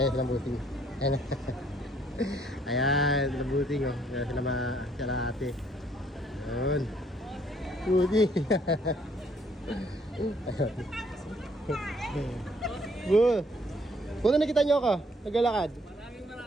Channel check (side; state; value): both; normal; correlation 0.65